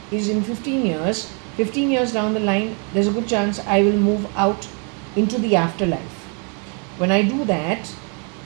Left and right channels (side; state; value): left; quieter; 37.8 dB